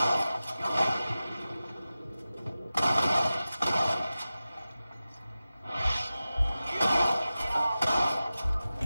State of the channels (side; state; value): both; inverted; correlation -0.95